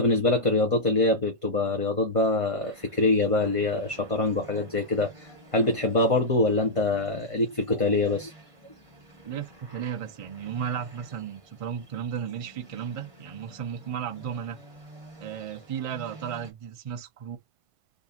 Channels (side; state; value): left; late; 1.5 ms